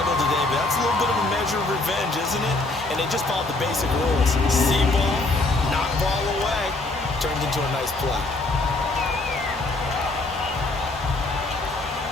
today, but that's a little bit of a measure of revenge, isn't it? And they just followed the basic rules. See ball, knock ball away, turns into a nice play.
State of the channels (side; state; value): right; quieter; 3.0 dB